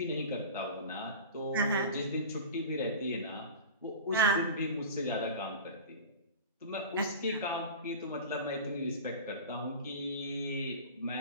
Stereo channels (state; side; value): inverted; both; correlation -0.34